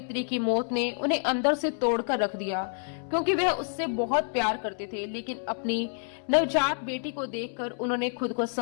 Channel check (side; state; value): right; silent; 59 dB below the other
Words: की मौत ने उन्हें अंदर से तोड़कर रख दिया, क्योंकि वह उससे बहुत प्यार करते थे। लेकिन अपनी नवजात बेटी को देखकर उन्होंने खुद को